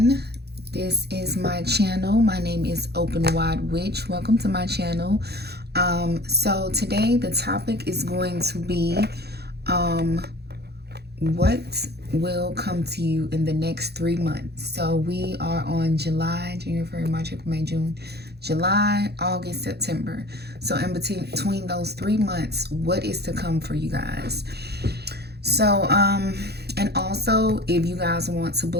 this is my channel. My name is Openwidewitch. Welcome to my channel. So today the topic is going to be what will come to you in the next 3 months. So we are on July, January, February, March, April, May, June, July, August, September. So in between those 3 months, what is to come for you guys? So and also, if you guys want to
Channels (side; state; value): left; late; 0.48 ms